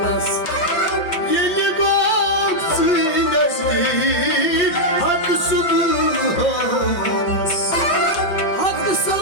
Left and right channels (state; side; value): late; right; 5.7 ms